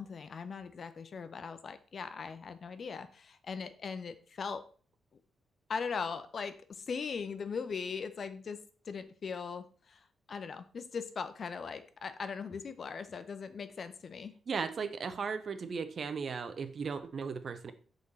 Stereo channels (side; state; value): both; normal; correlation 0.80